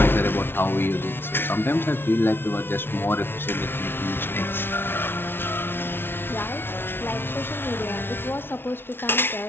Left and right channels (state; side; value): late; right; 0.11 ms